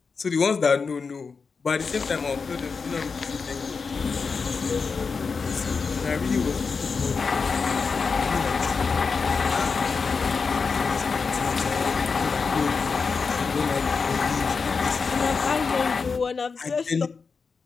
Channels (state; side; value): quieter; right; 5.0 dB